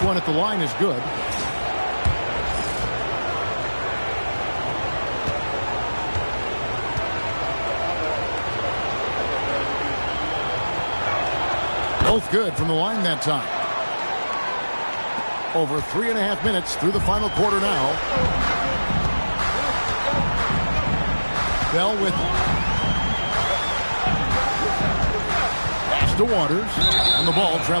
one at the line is good. Both good from the line that time. Over 3.5 minutes through the final quarter now. Bell with it. Pass to Waters, and the ball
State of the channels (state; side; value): inverted; both; correlation -1.00